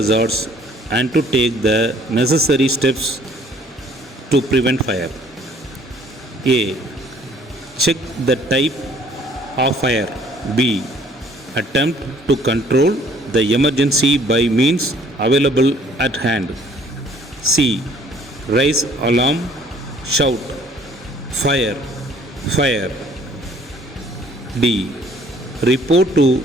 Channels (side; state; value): both; normal; correlation 0.58